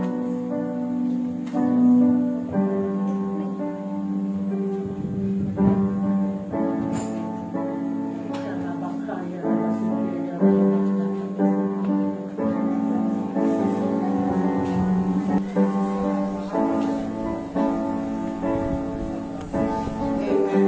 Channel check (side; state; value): both; identical; correlation 1.00